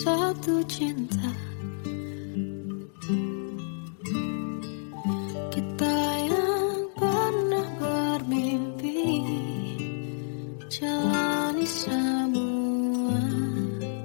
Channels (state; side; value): silent; right; digital silence